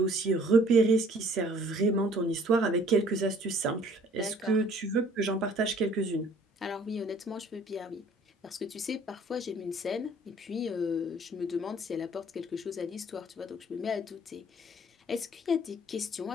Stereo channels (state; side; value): normal; both; correlation 0.56